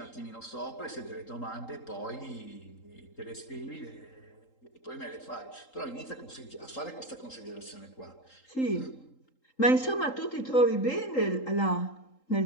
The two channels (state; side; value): late; right; 3.8 ms